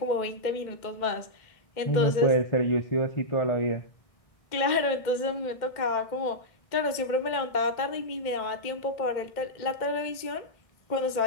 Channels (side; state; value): right; late; 2.1 ms